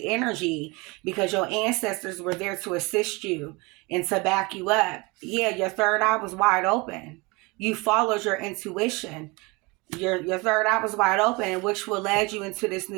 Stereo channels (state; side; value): quieter; left; 26.1 dB